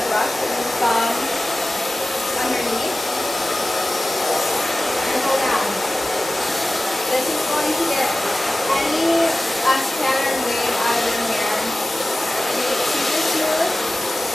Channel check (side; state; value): both; normal; correlation 0.96